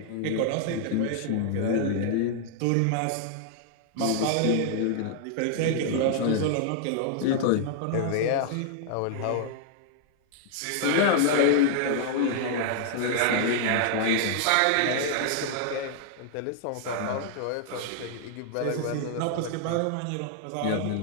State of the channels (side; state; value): both; different; correlation -0.01